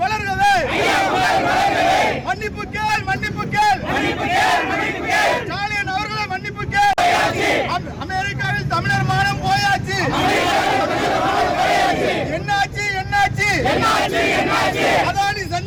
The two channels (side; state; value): both; identical; correlation 1.00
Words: வளர்கவே, மன்னிப்பு கேள் மன்னிப்பு கேள், ஸ்டாலின் அவர்களை மன்னிப்பு கேள். அமெரிக்காவில் தமிழர் மானம் போயாச்சு. என்னாச்சு என்னாச்சு, அதானி